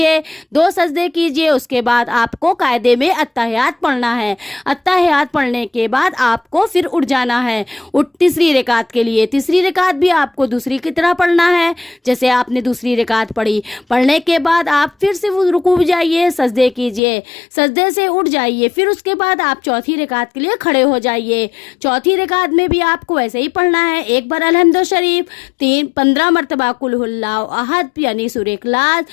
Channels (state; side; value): drops out; right; at 17.0 s